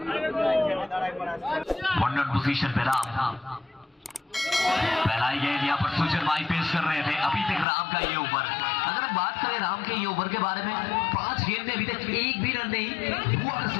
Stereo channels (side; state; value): right; drops out; at 7.7 s